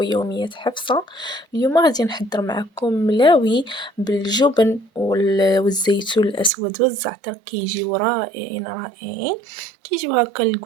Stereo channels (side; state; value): left; drops out; at 6.5 s